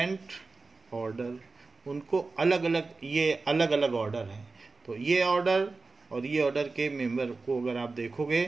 ऑर्डर, उनको अलग अलग, ये अलग अलग ऑर्डर हैं. तो ये ऑर्डर और ये ऑर्डर के मेंबर को अगर आप देखोगे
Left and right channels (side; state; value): left; quieter; 3.8 dB